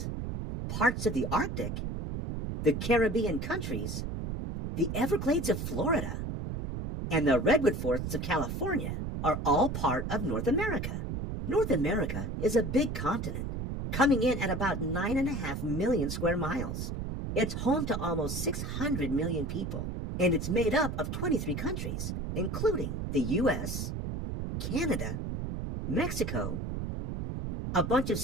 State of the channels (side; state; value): right; noise; rumble, 4 dB below the sound